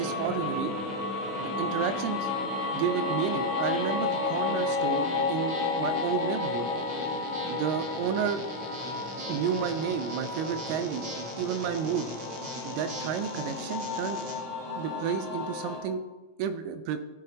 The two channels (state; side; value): late; left; 26 ms